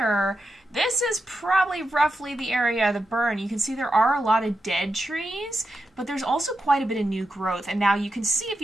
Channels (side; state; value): both; normal; correlation 0.87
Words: this is probably roughly the area of the burn. You can see there are a lot of dead trees, but there's also quite a bit of new growth. And now you can see if